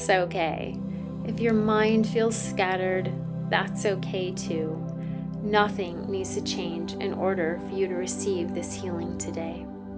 okay. If your mind feels scattered, that's okay too. Nothing needs to change in order for you to receive this healing today.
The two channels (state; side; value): identical; both; correlation 1.00